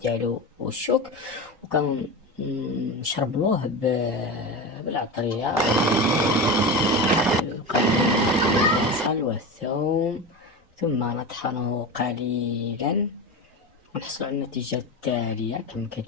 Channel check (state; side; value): normal; both; correlation 0.24